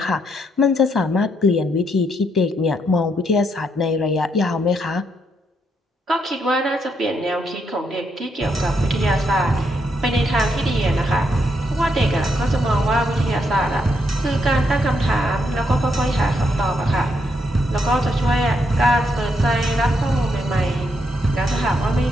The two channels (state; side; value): normal; both; correlation 0.77